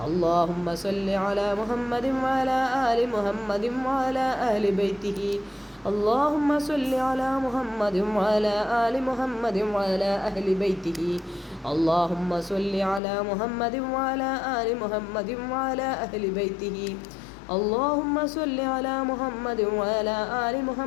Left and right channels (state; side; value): drops out; right; at 13.0 s